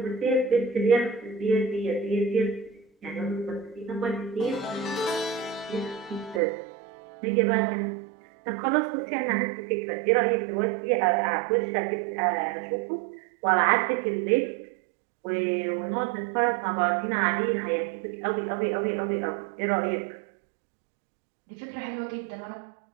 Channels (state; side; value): drops out; left; at 6.4 s